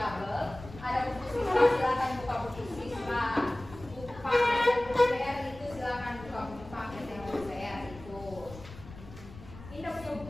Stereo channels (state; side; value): noise; left; rumble, 16 dB below the sound